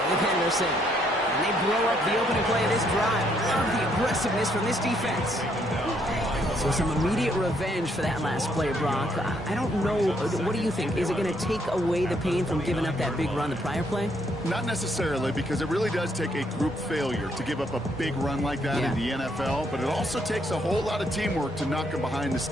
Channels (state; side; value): normal; both; correlation 0.71